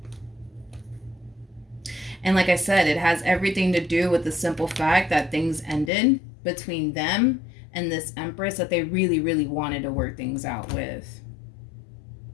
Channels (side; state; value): right; drops out; at 5.9 s